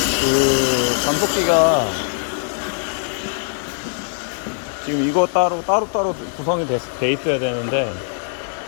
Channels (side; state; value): right; silent; digital silence